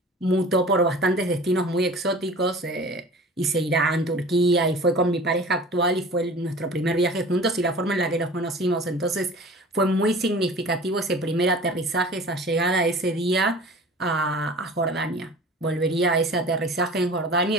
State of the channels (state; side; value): normal; both; correlation 0.41